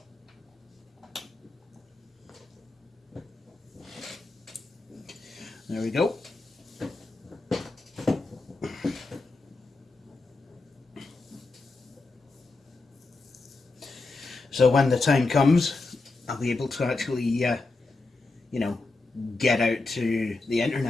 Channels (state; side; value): quieter; right; 3.5 dB